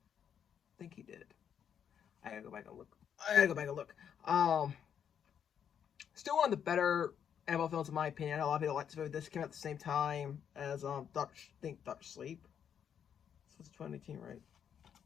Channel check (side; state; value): right; quieter; 8.4 dB